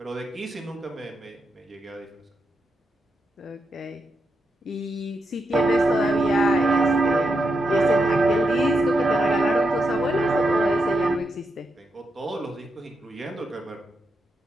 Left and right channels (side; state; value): both; normal; correlation 0.84